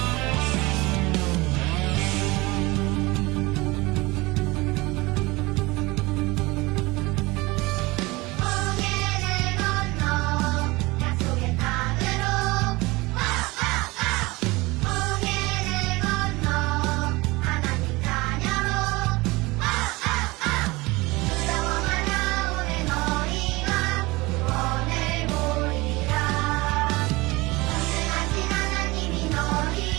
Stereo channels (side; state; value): left; quieter; 22.5 dB